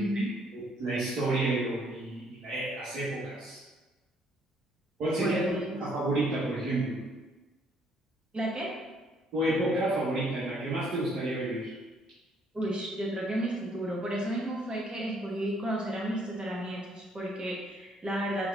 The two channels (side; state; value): both; normal; correlation 0.66